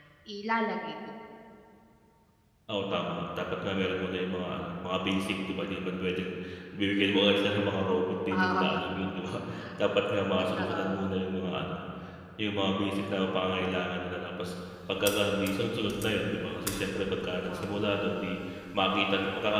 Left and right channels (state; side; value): identical; both; correlation 1.00